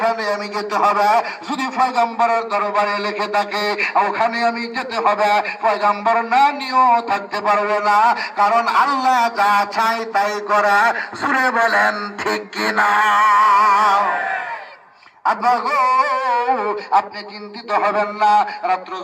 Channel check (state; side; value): identical; both; correlation 1.00